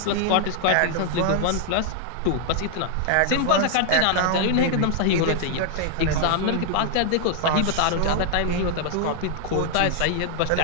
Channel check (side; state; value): both; different; correlation 0.00